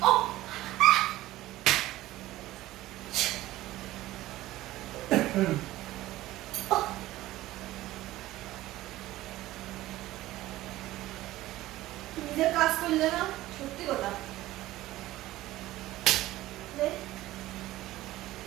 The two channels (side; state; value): left; quieter; 16.2 dB